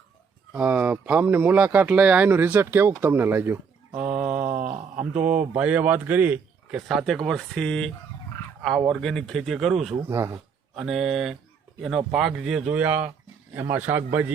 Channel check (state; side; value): quieter; left; 6.0 dB